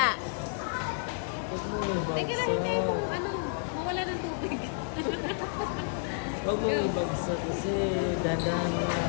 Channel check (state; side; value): silent; right; 57 dB below the other